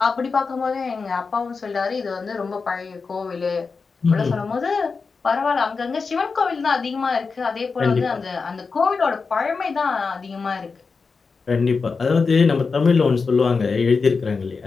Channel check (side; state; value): right; quieter; 4.7 dB